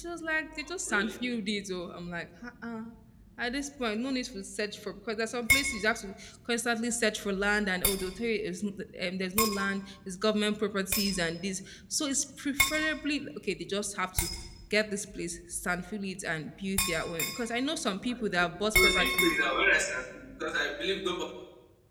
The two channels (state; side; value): identical; both; correlation 1.00